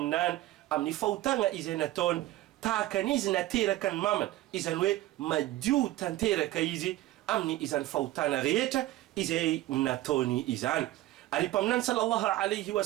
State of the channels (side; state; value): left; quieter; 15.8 dB